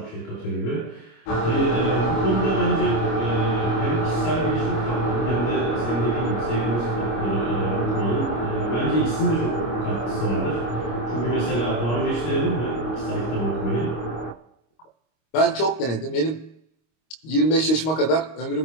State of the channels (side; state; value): right; late; 25 ms